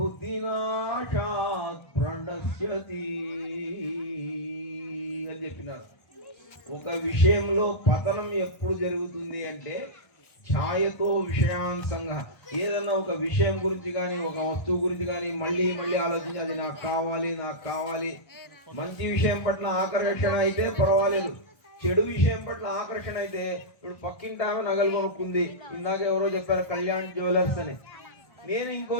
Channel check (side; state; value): right; late; 1.3 ms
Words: ప్రణశ్యతి అని చెప్పినారు. ఒక విషయంలో పతనం ఎప్పుడు జరుగుతుంది అంటే ఛాయతో విషయాన్ సంగ. ఏదన్నా ఒక విషయం గురించి కానీ ఒక వస్తువు గురించి కానీ మళ్ళీ మళ్ళీ ఆలోచించి అది నాకు కావాలి నాకు కావాలి. మంచి విషయం పట్ల ఆకర్షణ అయితే పర్వాలేదు, చెడు విషయం పట్ల ఆకర్షణ అయితే ఇప్పుడు పక్కింటి ఆమె నగలు కొనుక్కుంది. ఇందాక ఎవరో చెప్పారు కళ్యాణ్ జ్యువెలర్స్ అని. నేను ఇంకో